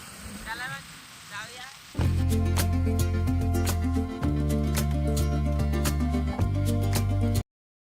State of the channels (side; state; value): both; identical; correlation 1.00